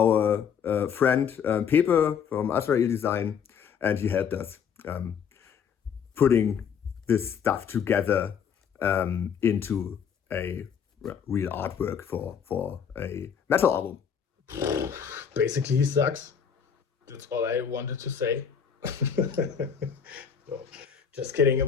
friend Pepe from Azrael Design, and he helped us putting this stuff together into a real artwork for a metal album. Basically, he sucks. That's all I wanted to say. No, just kidding.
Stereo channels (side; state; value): right; quieter; 7.3 dB